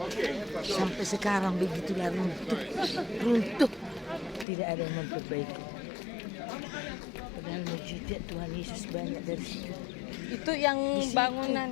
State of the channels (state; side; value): drops out; right; at 4.5 s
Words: sampai sekarang begitulah runtuh, tidak ada yang memperbaiki. Padahal mujizat Tuhan Yesus banyak dari situ. Itu yang Di situ.